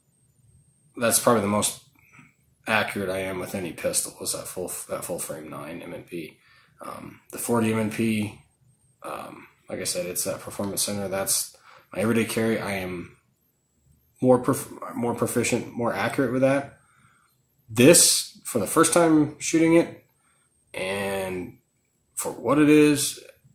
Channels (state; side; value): identical; both; correlation 1.00